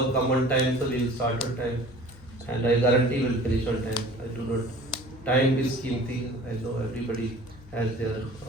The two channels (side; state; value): both; normal; correlation 0.45